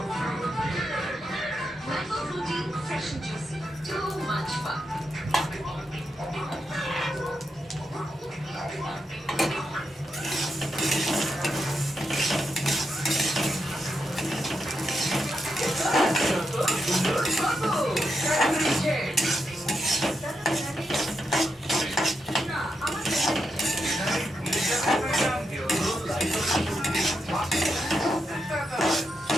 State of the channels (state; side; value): normal; both; correlation 0.84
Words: mango Frooti fresh and juicy too much fun